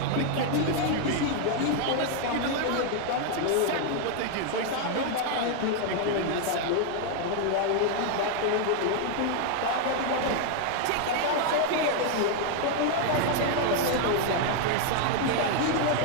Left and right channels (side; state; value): both; different; correlation 0.00